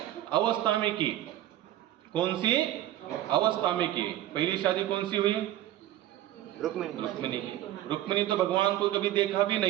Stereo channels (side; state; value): left; quieter; 13.4 dB